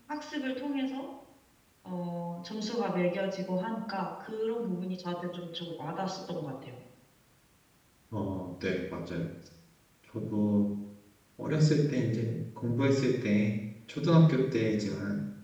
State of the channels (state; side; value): identical; both; correlation 1.00